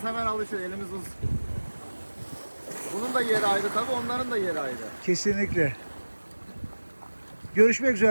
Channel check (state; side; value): inverted; both; correlation -1.00